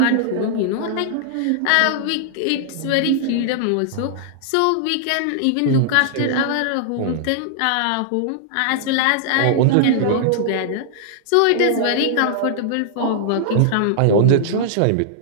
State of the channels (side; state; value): both; different; correlation -0.01